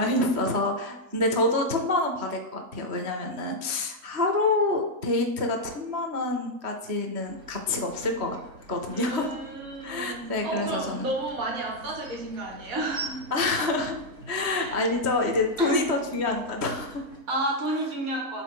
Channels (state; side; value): late; left; 3.2 ms